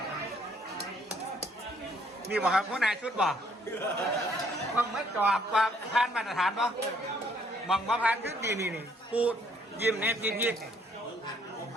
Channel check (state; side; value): normal; both; correlation 0.65